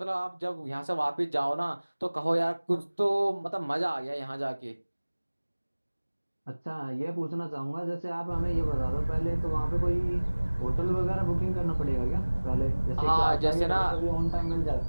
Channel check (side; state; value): both; inverted; correlation -1.00